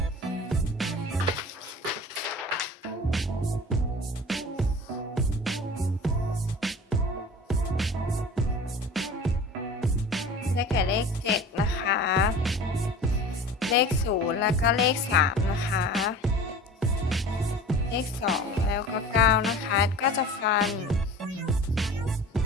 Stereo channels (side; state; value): both; normal; correlation 0.39